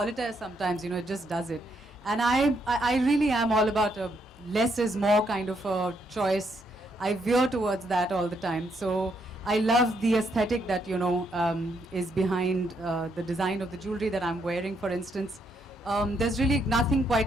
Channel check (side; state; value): both; normal; correlation 0.75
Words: sometimes, it just does it. And I really am all about a less is more kind of a choice. I veer towards that all the time. So I love the aesthetic that, is behind the design of the jewelry that I'm wearing, for instance. There's really nothing